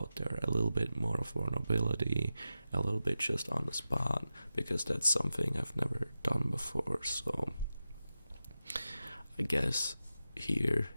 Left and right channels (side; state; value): both; inverted; correlation -0.92